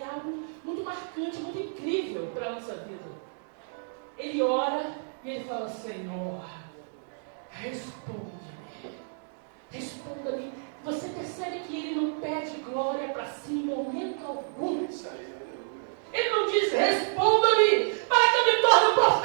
algo muito marcante, muito incrível para a nossa vida. Ele ora e ele fala: Senhor, responde-me. Responda-me. Você percebe que ele não pede glória para si em momento algum. Ele não diz: responda-me para que eu me torne um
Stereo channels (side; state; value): left; silent; digital silence